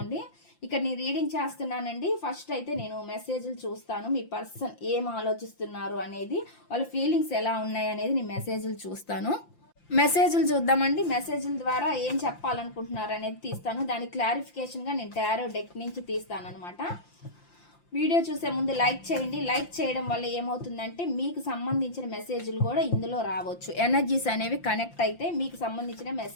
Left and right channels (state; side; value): late; right; 5.8 ms